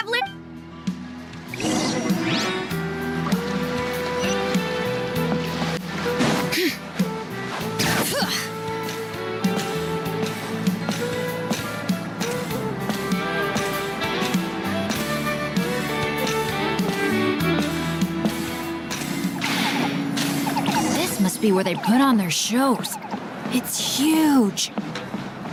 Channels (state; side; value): identical; both; correlation 1.00